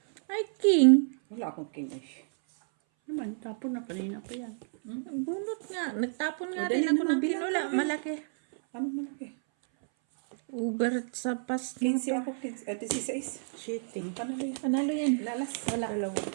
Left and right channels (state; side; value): silent; left; 58 dB below the other